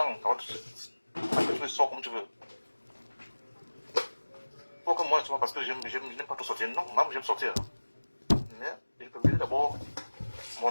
an. Tu sors comme tu veux. Faut que moi, parce que je n'aime pas tout sortir. Non, même j'aime sortir. Mais il faut payer d'abord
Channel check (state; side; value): inverted; both; correlation -1.00